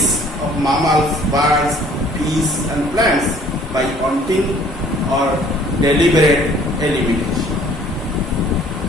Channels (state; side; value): normal; both; correlation 0.55